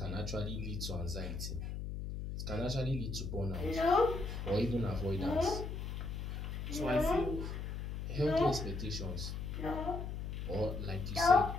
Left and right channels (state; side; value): noise; left; hum, 5 dB below the sound